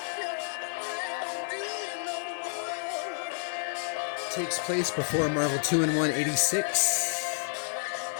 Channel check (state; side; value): silent; right; 56 dB below the other